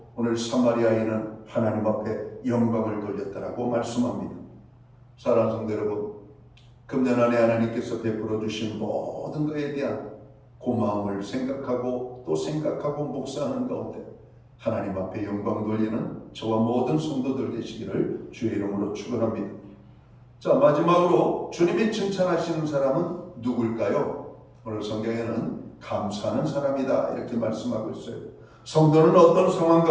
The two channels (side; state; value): both; identical; correlation 1.00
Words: 오늘 사마리아인은 하나님 앞에 영광을 돌렸다라고 말씀합니다. 사랑하는 성도 여러분, 금년 안에 하나님께서 베풀어 주신 모든 것에 대한 고마움을 생각하고 또 생각하고 묵상하는 가운데 하나님 앞에 영광 돌리는 저와 모든 성도들 되시기를 주의 이름으로 축원합니다. 자, 마지막으로 주님이 칭찬하시는 사람은 누굴까요? 오늘 성경에는 감사하는 사람이다, 이렇게 말씀하고 있어요. 성도는 어떤 상황